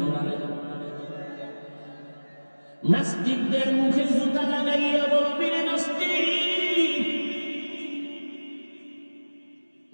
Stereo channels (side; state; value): both; inverted; correlation -1.00